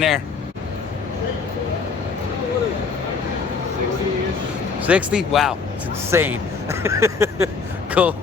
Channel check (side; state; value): right; quieter; 5.0 dB